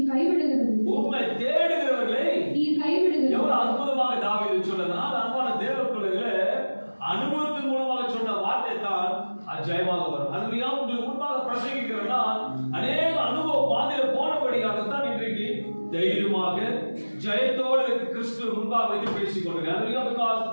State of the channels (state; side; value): inverted; both; correlation -1.00